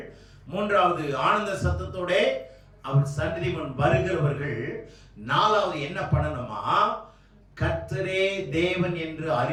3வது ஆனந்த சத்தத்தோட அவர் சன்னதி முன் வருகிறவர்கள், 4வது என்ன பண்ணணுமா, கர்த்தரே தேவன் என்று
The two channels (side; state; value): both; identical; correlation 1.00